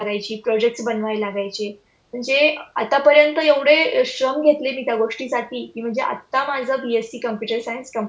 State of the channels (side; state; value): both; identical; correlation 1.00